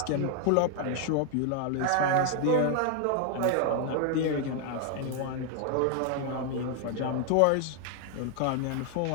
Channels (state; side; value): different; both; correlation 0.00